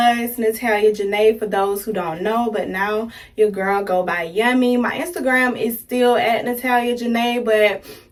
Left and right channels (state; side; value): identical; both; correlation 1.00